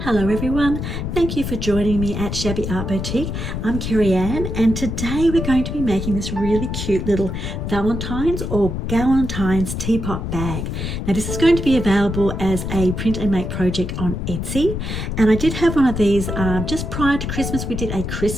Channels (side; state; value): left; noise; rumble, 4 dB below the sound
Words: Hello everyone, thank you for joining me at Shabby Art Boutique. I'm Kerryanne and today we're going to be making this really cute little Valentine's or Galentine's teapot bag. Now this is going to be available as a print and make project on Etsy, and I did have one of these just prior to Christmas. We did a